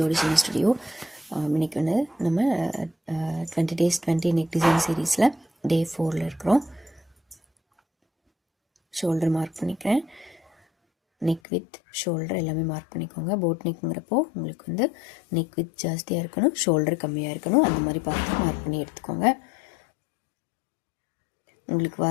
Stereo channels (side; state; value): right; drops out; at 11.4 s